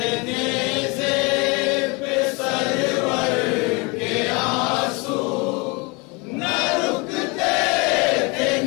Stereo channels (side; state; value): right; quieter; 28.4 dB